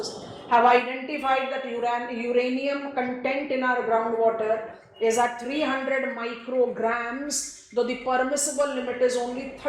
have identified that uranium content in our groundwater is at 300 micrograms, though the permissible limit is only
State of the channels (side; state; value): both; identical; correlation 1.00